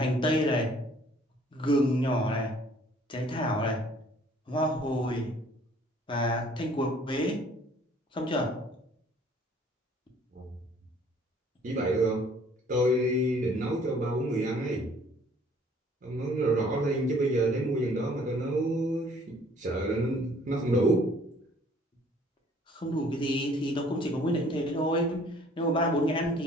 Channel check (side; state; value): both; normal; correlation 0.57